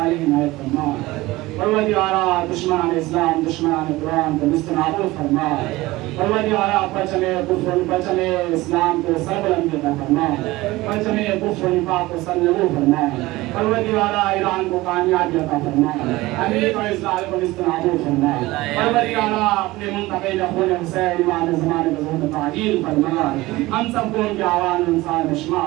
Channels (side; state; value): left; quieter; 19.3 dB